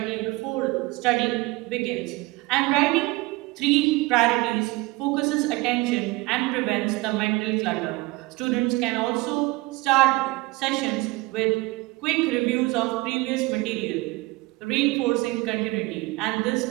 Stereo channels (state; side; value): quieter; left; 22.2 dB